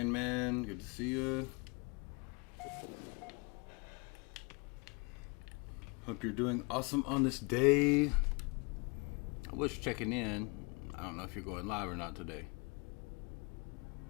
man. Good to see you. Hope you're doing awesome on this day. I was checking in. I don't know if you're going live or not today.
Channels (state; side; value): quieter; right; 31.0 dB